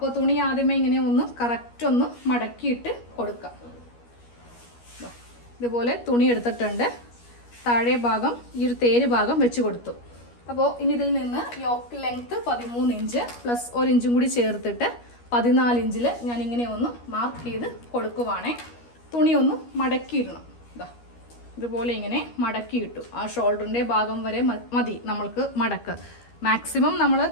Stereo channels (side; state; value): right; late; 13 ms